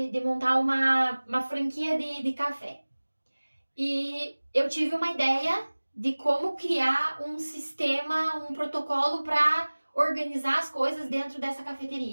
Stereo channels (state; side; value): inverted; both; correlation -1.00